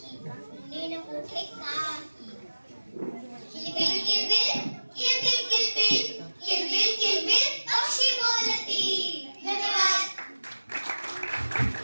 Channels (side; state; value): both; inverted; correlation -1.00